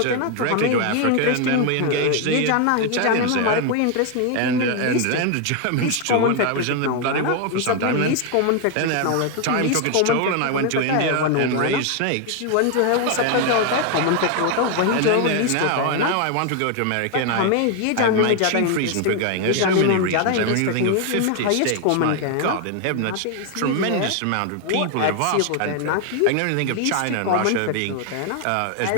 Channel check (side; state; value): both; different; correlation 0.01